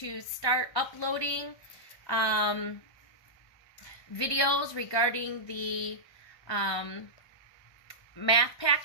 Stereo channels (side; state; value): right; late; 1.2 ms